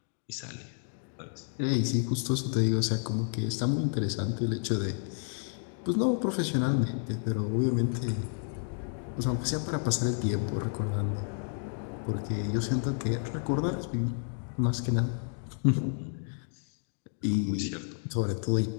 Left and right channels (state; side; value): silent; right; 57 dB below the other